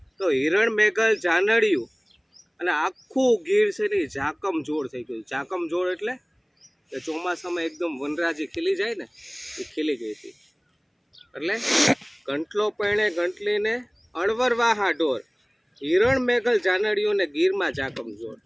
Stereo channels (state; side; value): identical; both; correlation 1.00